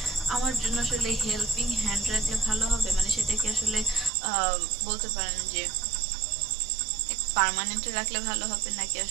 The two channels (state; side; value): drops out; left; at 4.1 s